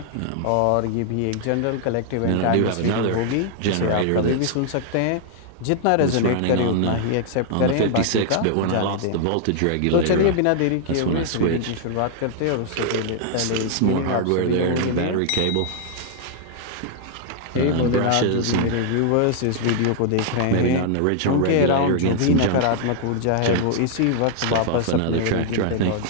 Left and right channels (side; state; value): both; different; correlation -0.01